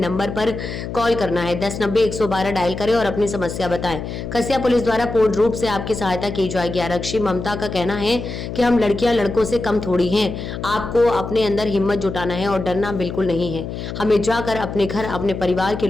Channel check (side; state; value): left; noise; hum, 7 dB below the sound